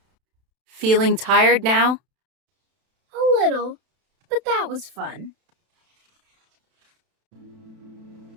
Feeling tired now? A little, but that was fun.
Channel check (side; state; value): left; late; 32 ms